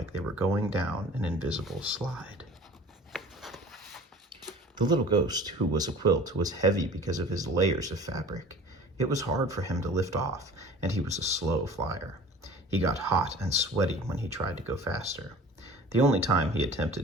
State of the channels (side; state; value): both; normal; correlation 0.43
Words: they were going down an invisible slide. The little ghost who was a quilt was heavy because of his layers of fabric. It was hard for him to lift off, and he was a slow flyer. He got hot and sweaty when he tried to go faster. The only time he